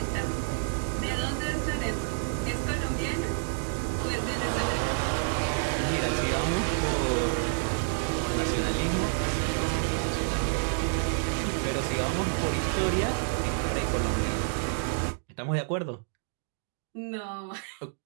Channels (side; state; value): left; silent; digital silence